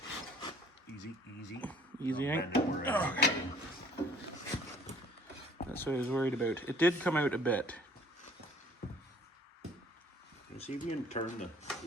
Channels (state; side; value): normal; both; correlation 0.56